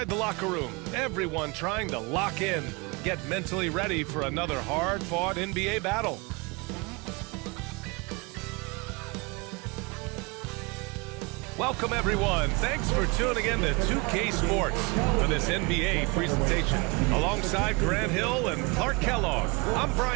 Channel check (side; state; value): left; quieter; 28.1 dB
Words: the locker room, everyone trying to lock in, get mentally ready for another hard-fought NBA battle. Welcome, everyone. Thanks for tuning in to 2K Sports for this NBA presentation. Alongside Grant Hill and Clark Kellogg, I'm